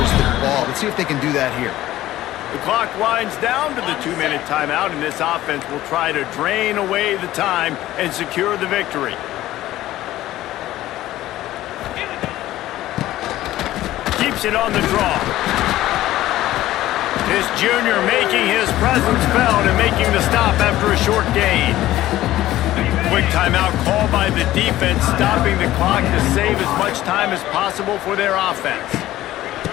the ball. Let's see if they can do that here. The clock winds down to the 2-minute timeout, and this offense will try to drain away the time and secure the victory. Keeps it on the draw. This junior making his presence felt and making the stop after a short gain. Quick timeout called by the defense, stopping the clock to save as much time as possible for their offense.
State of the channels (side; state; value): right; quieter; 15.0 dB